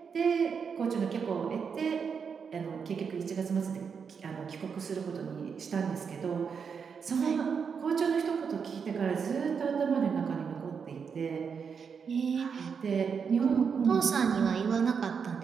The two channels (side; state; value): left; quieter; 6.3 dB